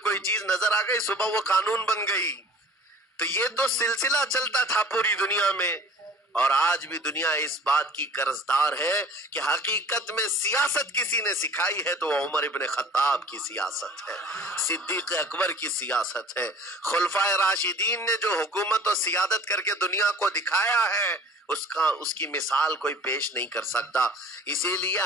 کوئی چیز نظر آ گئی صبح وہ قانون بن گئی۔ تو یہ تو سلسلہ چلتا تھا پوری دنیا میں، اور آج بھی دنیا اس بات کی قرضدار ہے کہ حقیقت میں سیاست کسی نے سکھائی ہے تو وہ عمر ابن خطاب کی سیاست ہے، صدیق اکبر کی سیاست ہے۔ خلفائے راشدین نے جو حکومت اور سیادت کر کے دنیا کو دکھایا ہے اس کی مثال کوئی پیش نہیں کر سکتا۔ اسی لیے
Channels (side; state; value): both; normal; correlation 0.45